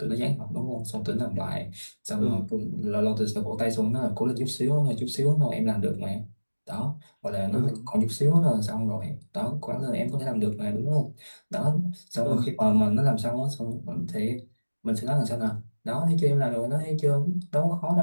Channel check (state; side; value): inverted; both; correlation -1.00